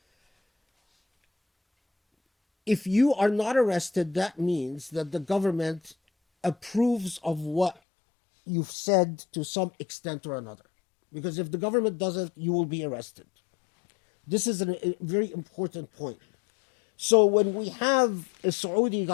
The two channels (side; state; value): right; drops out; at 7.8 s